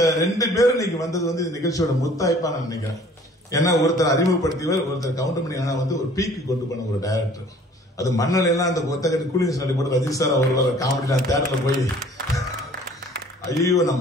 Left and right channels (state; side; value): normal; both; correlation 0.53